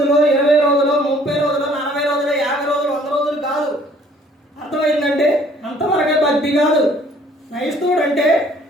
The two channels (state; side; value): normal; both; correlation 0.58